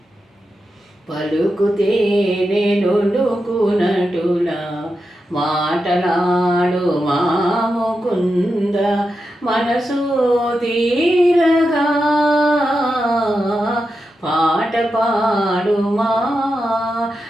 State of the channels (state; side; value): normal; both; correlation 0.88